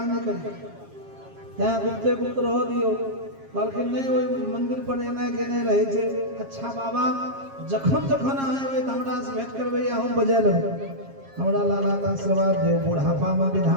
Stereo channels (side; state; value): left; late; 7.4 ms